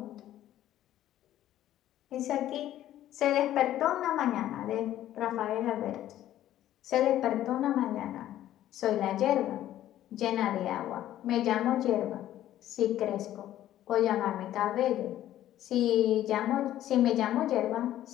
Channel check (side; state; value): right; quieter; 12.8 dB